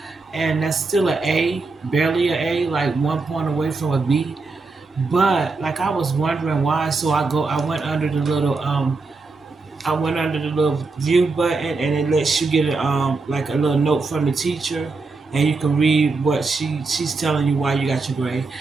And that's still an A, barely an A, like 1 point away from a B. But like I was wondering why, so I went under the little view button, and it lets you get like a little note from the teacher, and you can read what she's telling you why you got your grade,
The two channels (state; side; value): quieter; left; 4.0 dB